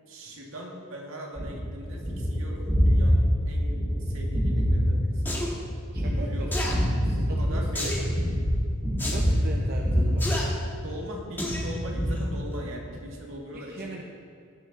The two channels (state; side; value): normal; both; correlation 0.90